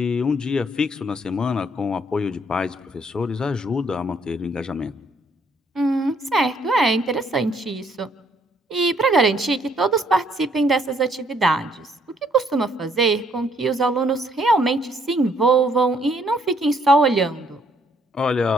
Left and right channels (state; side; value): normal; both; correlation 0.67